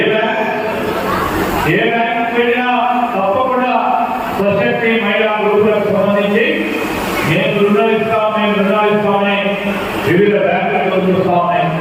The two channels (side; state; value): both; identical; correlation 1.00